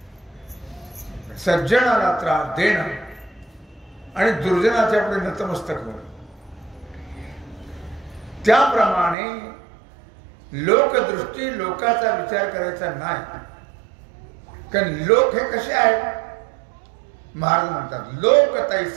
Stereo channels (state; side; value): drops out; left; at 9.2 s